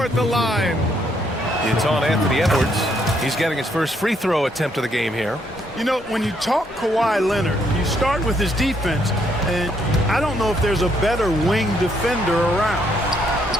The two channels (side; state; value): both; normal; correlation 0.72